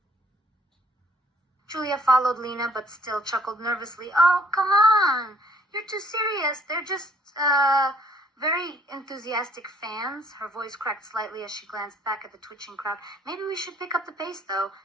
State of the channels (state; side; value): normal; both; correlation 0.61